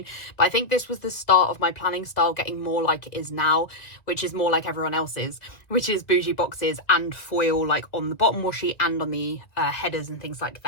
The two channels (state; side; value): late; right; 2.1 ms